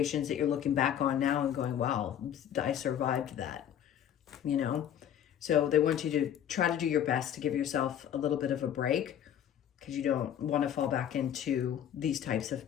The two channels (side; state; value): right; quieter; 9.9 dB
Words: that you're looking back on now and going, wow, I survived that, you know? So they want you to try to do your best to give yourself a little bit of a break, because you don't want to fall back into these types of